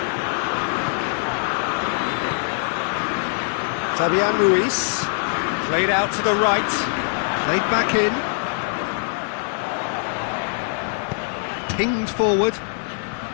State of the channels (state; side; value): silent; right; 64 dB below the other